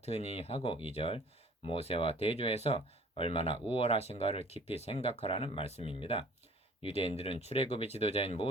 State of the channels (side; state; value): both; normal; correlation 0.51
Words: 하고 2절 모세와 대조해서 얼마나 우월하신가를 깊이 생각하라는 말씀입니다. 유대인들은 출애굽의 지도자인